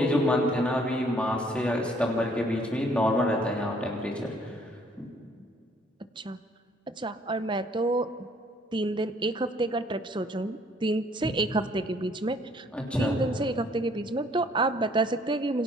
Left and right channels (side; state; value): both; normal; correlation 0.62